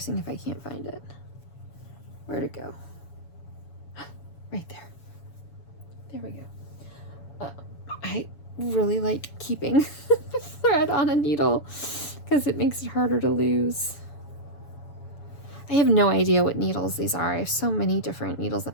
if I can't find it. Where'd it go? Right there. There we go. I really like keeping the thread on a needle because it makes it harder to lose. I have no idea what needles these are. I have so many different needles.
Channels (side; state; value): right; late; 7.1 ms